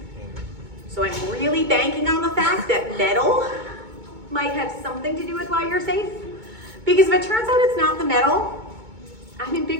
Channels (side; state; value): left; late; 2.2 ms